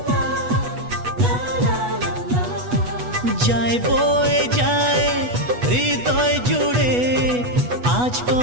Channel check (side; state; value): left; late; 8.2 ms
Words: যায় বয়ে যায় হৃদয় জুড়ে আজ